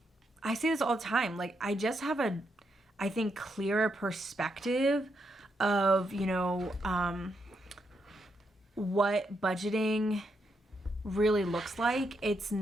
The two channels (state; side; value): normal; both; correlation 0.80